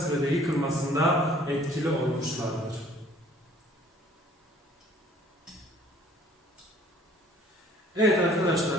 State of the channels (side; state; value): both; normal; correlation 0.55